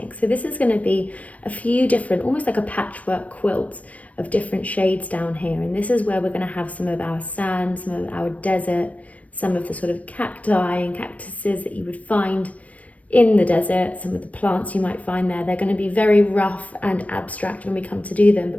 So this is going to be a few different, almost like a patchwork quilt of different shades down here. And this is where we're going to have some of our sand, some of our desert, some of the sort of cacti and cactuses that you would find in the desert, some of the plants you might find there. They're going to be very rough and abstract when we come to do them,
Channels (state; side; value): late; right; 0.067 ms